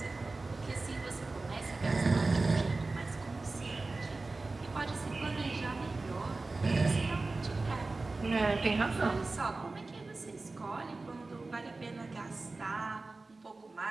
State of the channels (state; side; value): quieter; left; 3.5 dB